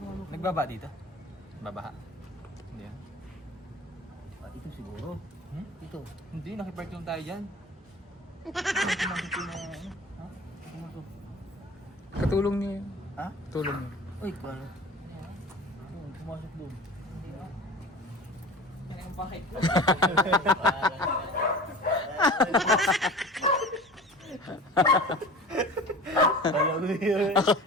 ano? Nagbaba dito? Babaha? Hindi ah. Ah, ito siguro. Ito. Hindi, nakipark lang tayo dyan. Katulong niyo yun. Ha? Tulong niyo. Uy, paano? pumasok doon. Hindi ba? Ano yung bakit ko? Alam mo yun.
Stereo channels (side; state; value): both; normal; correlation 0.38